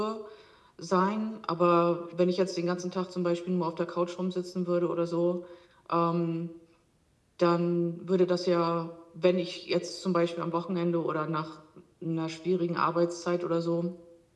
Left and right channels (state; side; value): identical; both; correlation 1.00